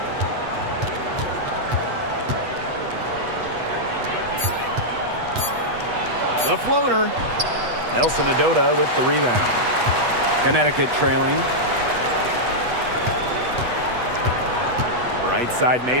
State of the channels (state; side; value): late; left; 8.2 ms